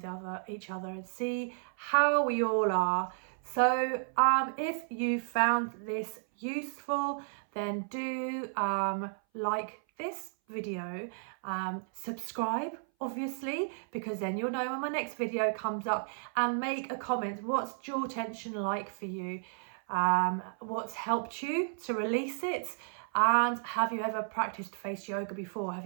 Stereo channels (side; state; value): left; silent; 56 dB below the other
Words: each other and see how we all are. So if you found this useful, then do like this video, subscribe obviously, because then you'll know when my next video comes up, and make a comment. What's jaw tension like for you? What's helped you to release it, And have you ever practiced face yoga before? Have